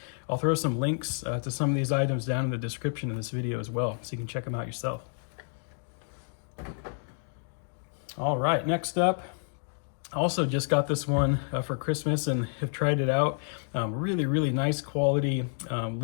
I'll throw some links to some of these items down in the description of this video as well, so you can check them out yourself. All right, next up, I also just got this one for Christmas and have tried it out. Really nice quality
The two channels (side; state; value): right; silent; 58 dB below the other